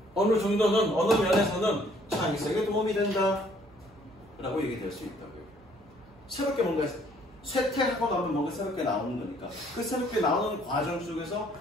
어느 면에서는 창의성에 도움이 된다 라고 얘기될 수 있다고요. 새롭게 뭔가 쇠퇴하고 나면 뭔가 새롭게 나오는 거니까 그 새롭게 나오는 과정 속에서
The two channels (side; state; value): right; noise; hum, 26 dB below the sound